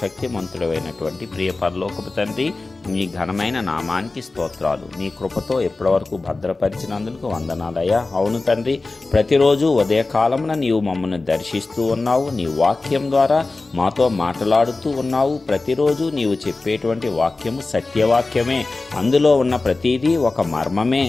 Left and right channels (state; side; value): quieter; right; 3.4 dB